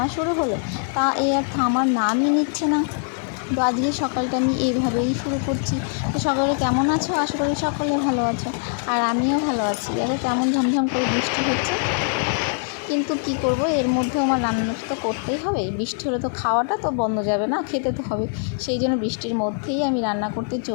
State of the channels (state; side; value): silent; right; 63 dB below the other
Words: শুরু হলো, তা আর থামার নামই নিচ্ছে না। তো আজকে সকালটা আমি এইভাবেই শুরু করছি। তো সকালে কেমন আছো? আশা করি সকলে ভালো আছো, আর আমিও ভালো আছি। দেখো কেমন ঝমঝম করে বৃষ্টি হচ্ছে, কিন্তু কি করব, এর মধ্যে আমার রান্নাটা তো করতেই হবে। বৃষ্টি হলে তো খাওয়াটা তো বন্ধ যাবে না, খেতে তো হবে। সেই জন্য বৃষ্টির মধ্যেই আমি রান্না করতে